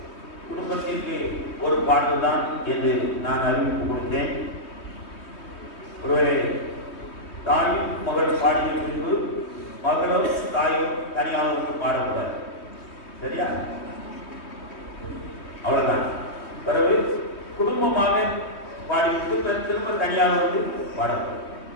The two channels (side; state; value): right; late; 3.2 ms